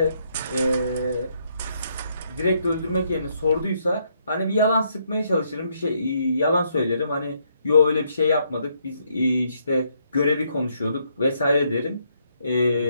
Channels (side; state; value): both; inverted; correlation -0.73